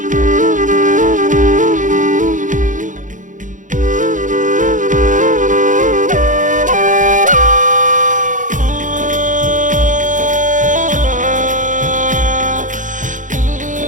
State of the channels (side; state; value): left; late; 0.37 ms